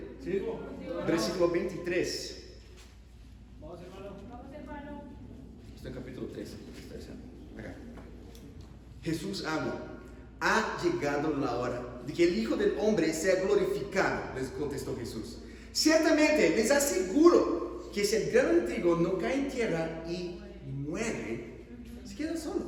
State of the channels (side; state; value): both; identical; correlation 1.00